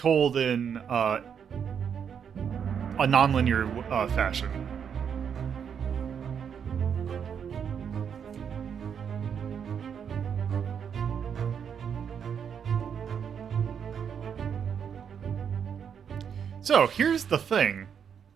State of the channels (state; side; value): quieter; left; 7.5 dB